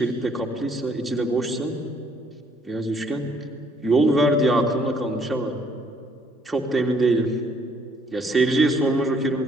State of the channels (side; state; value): both; normal; correlation 0.65